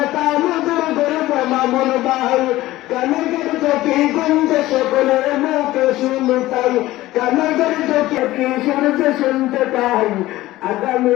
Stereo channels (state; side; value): quieter; right; 16.8 dB